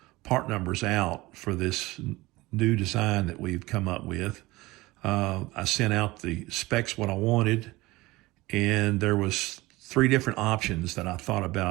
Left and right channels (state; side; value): quieter; left; 20.3 dB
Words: part numbers out for this new design that we've come up with. I sent out the specs, what I wanted, and there was 3 different options that I thought